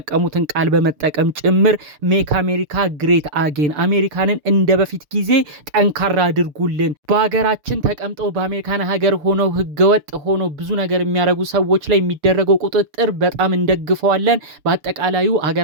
ቃል በመጠቀም ጭምር ሜክ አሜሪካ ግሬት አጌን፣ አሜሪካንን እንደ በፊት ጊዜ ጠንካራ አድርጉልን፣ በሀገራችን ተቀምጠው በአሜሪካን ሀገር ሆነው ህገወጥ ሆነው ብዙ ነገር የሚያደርጉ ሰዎች ላይ የሚደረገው ቁጥጥር በጣም እንደግፈዋለን፣ በአጠቃላዩ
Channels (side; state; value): left; late; 6.7 ms